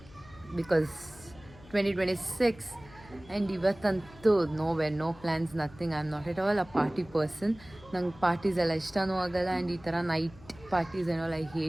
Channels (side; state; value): left; noise; hum, 21 dB below the sound